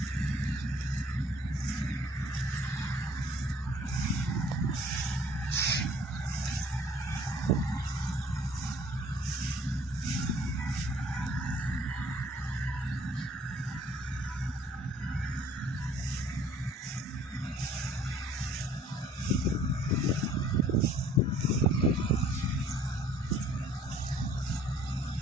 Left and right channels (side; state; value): both; normal; correlation 0.57